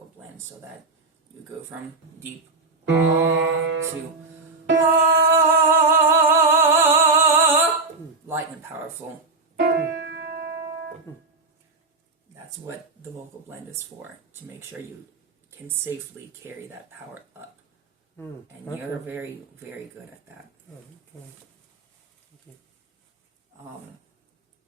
blend, so that you go from deep to light and powerful. That's what the vocal blend is for, to make sure you can safely carry that power up. And you're very, very good at that.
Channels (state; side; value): quieter; left; 3.8 dB